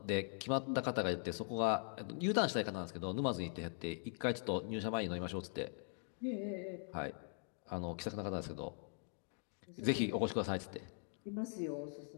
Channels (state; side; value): silent; right; 50 dB below the other